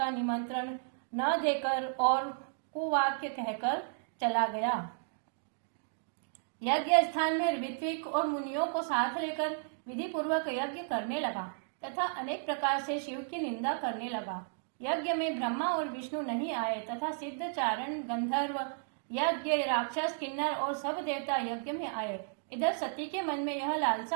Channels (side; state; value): left; silent; digital silence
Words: निमंत्रण न देकर और कुवाक्य कहकर चला गया। यज्ञ स्थान में ऋत्विक और मुनियों को साथ लेकर विधि पूर्वक यज्ञ करने लगा तथा अनेक प्रकार से शिव की निंदा करने लगा। यज्ञ में ब्रह्मा और विष्णु नहीं आए तथा सिद्ध, चारण, गंधर्व, यज्ञ, राक्षस, किन्नर और सब देवता यज्ञ में आए। इधर सती के मन में यह